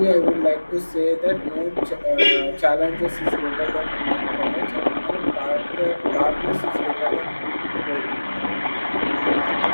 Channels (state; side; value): inverted; both; correlation -1.00